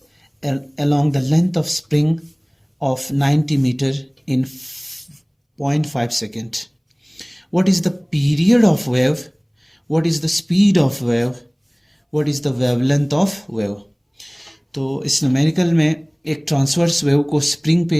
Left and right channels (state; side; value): identical; both; correlation 1.00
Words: along the length of spring of 90 meter in 0.5 second. What is the period of wave? What is the speed of wave? What is the wavelength of wave? तो इस numerical में एक transverse wave को spring